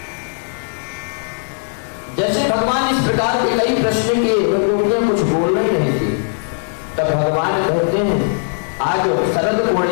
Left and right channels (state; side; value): silent; right; 67 dB below the other